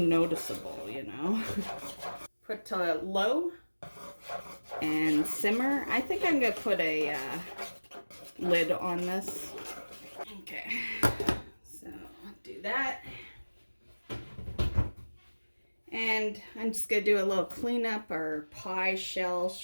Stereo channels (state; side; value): inverted; both; correlation -1.00